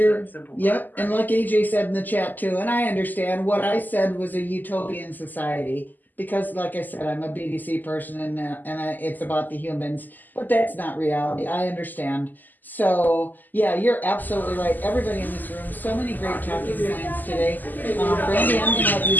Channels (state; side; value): late; right; 0.086 ms